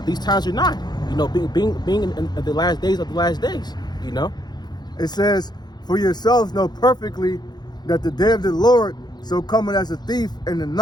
these times are nigh. Being in the last days of the last days. It says, for yourselves know perfectly that the day of the Lord so coming as a thief in the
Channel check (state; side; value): late; right; 0.20 ms